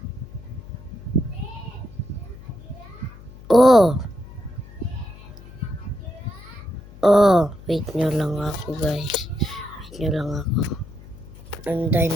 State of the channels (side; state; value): left; noise; hum, 18 dB below the sound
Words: Wait nyo lang ako guys. Andahin